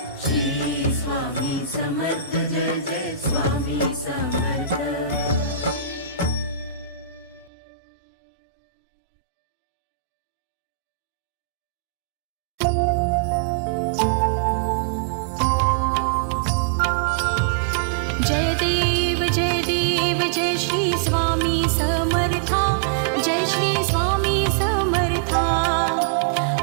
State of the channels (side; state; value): left; drops out; at 7.5 s